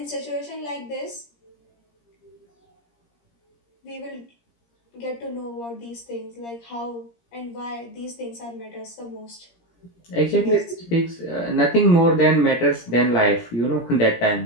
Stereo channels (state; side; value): late; right; 17 ms